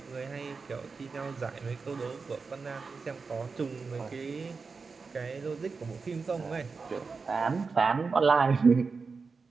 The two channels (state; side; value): quieter; left; 4.7 dB